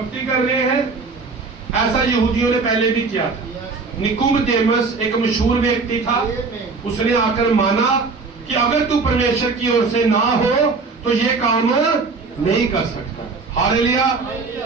कर रहे हैं। ऐसा यहूदियों ने पहले भी किया था। निकुदेमुस एक मशहूर व्यक्ति था। उसने आकर माना कि अगर तू परमेश्वर की ओर से ना हो तो ये काम नहीं कर सकता। हालेलुया।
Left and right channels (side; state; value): left; quieter; 4.3 dB